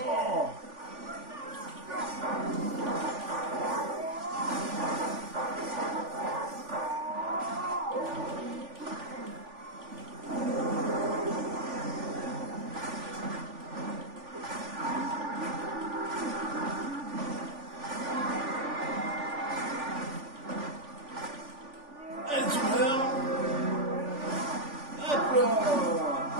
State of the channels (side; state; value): left; late; 3.5 ms